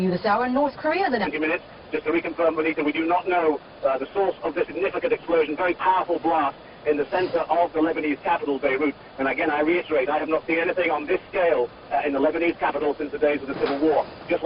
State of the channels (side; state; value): both; identical; correlation 1.00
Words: this hour. North Korea, the next 20 minutes. Just to reconfirm, Bonita, we do not know the source of this significant explosion, very powerful blast in the center of the Lebanese capital, Beirut. And again, I reiterate, I have not seen anything on this scale in the Lebanese capital since the days of the Civil War. Just